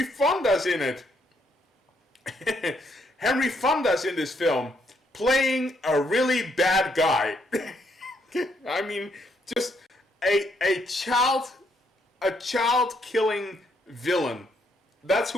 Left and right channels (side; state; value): both; normal; correlation 0.73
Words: Fonda's in it. Henry Fonda's in this film, playing a really bad guy. I mean, just a child killing villain. That's